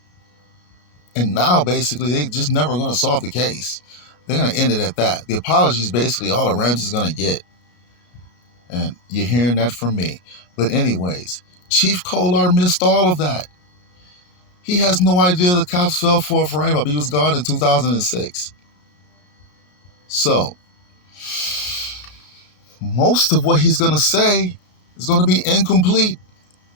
And now, basically, they're just never going to solve the case. They're going to end it at that. The apology is basically all the Ramseys going to get. And you're hearing that from me. But anyways, Chief Kolar missed all of that. He has no idea the cops fell for a frame-up. He was gone in 2006. So, most of what he's going to say is going to be incomplete.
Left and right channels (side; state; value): right; late; 33 ms